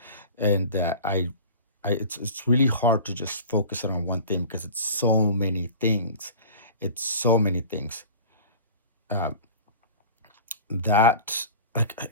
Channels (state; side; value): inverted; both; correlation -0.39